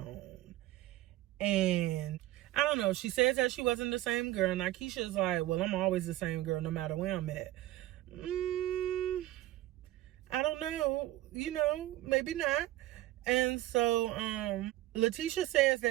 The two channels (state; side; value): quieter; left; 15.7 dB